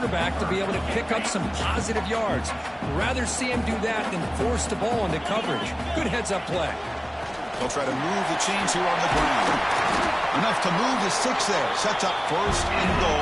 to be able to pick up some positive yards. Rather see him do that than force the ball into coverage. Good heads-up play. They'll try to move the chains here on the ground. Enough to move the 6 there. Sets up first and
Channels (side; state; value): both; identical; correlation 1.00